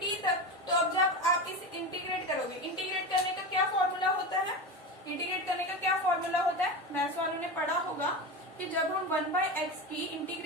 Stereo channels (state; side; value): normal; both; correlation 0.22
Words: t तक। तो अब जब आप इस इंटीग्रेट करोगे, इंटीग्रेट करने का क्या फॉर्मूला होता है, इंटीग्रेट करने का क्या फॉर्मूला होता है, मैथ्स वालों ने पढ़ा होगा कि जब हम 1/x की